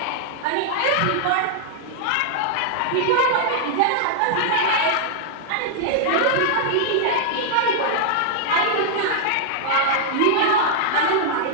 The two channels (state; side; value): different; both; correlation -0.01